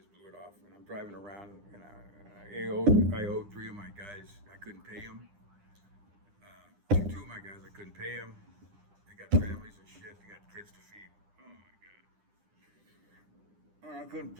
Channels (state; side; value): late; left; 9.9 ms